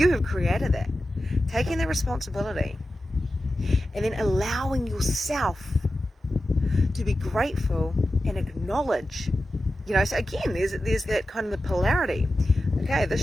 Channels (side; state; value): both; normal; correlation 0.93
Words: have created that. Taking the responsibility and then allowing yourself to be grateful and acknowledge, so again, there's that kind of the polarity. Okay,